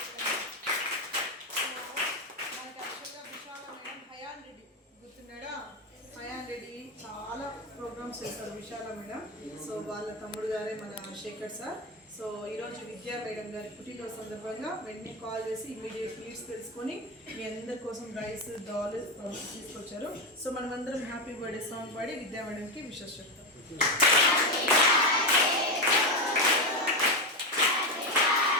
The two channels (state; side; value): normal; both; correlation 0.11